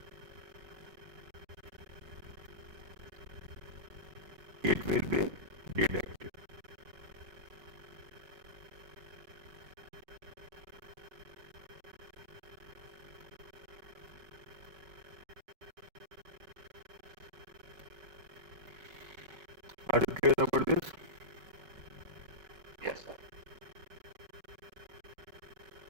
It will be deducted. Are you clear about this? Yes, sir.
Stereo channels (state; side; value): late; left; 5.3 ms